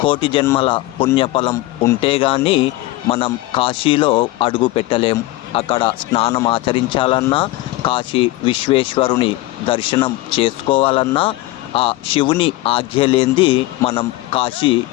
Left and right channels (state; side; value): quieter; right; 18.5 dB